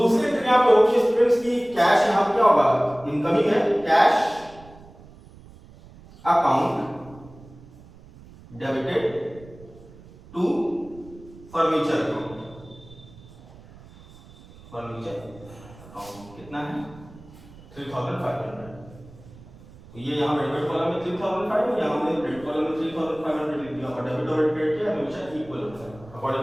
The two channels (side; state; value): right; noise; rumble, 21 dB below the sound